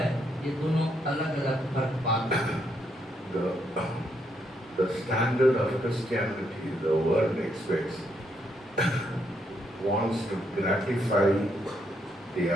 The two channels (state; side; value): normal; both; correlation 0.76